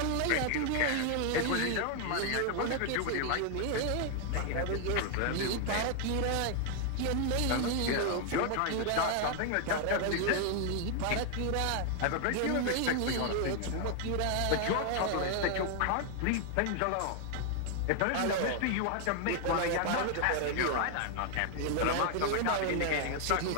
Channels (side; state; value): both; different; correlation 0.00